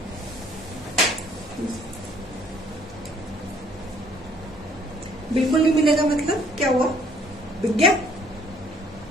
बिल्कुल नहीं मिलेगा मतलब क्या हुआ? बिक गया?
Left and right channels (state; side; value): normal; both; correlation 0.61